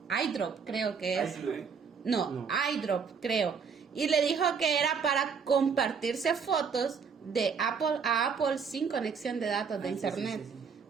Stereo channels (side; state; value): left; quieter; 6.0 dB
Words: iDrop, creo que es. No, iDrop, creo. Y le dijo que era para compartirse fotos de Apple a Apple sin conexión de datos de internet. Sí.